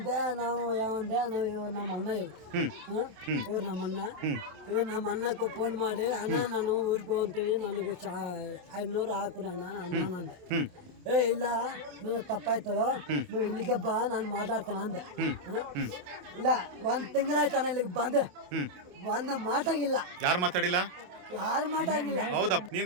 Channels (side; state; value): left; late; 28 ms